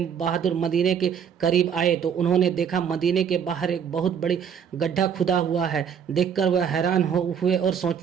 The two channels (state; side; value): quieter; left; 7.6 dB